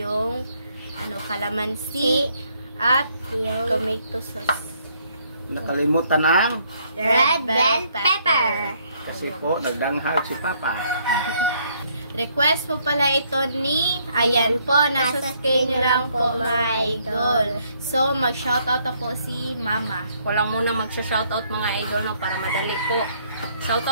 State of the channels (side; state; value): both; inverted; correlation -0.68